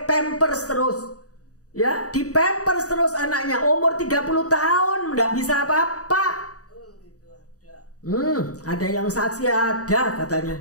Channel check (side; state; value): right; late; 0.66 ms